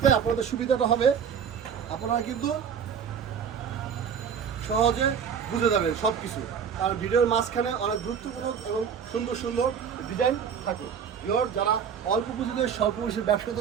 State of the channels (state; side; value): quieter; left; 7.4 dB